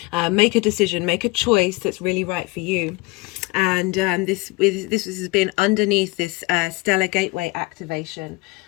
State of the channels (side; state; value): right; quieter; 24.2 dB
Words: make a decision, make a choice that's really right for you. And this has been underneath this stellar gateway activation.